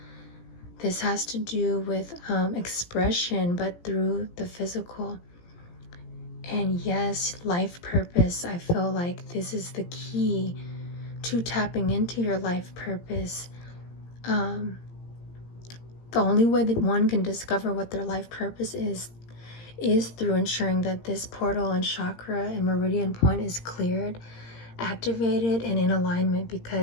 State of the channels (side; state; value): right; late; 17 ms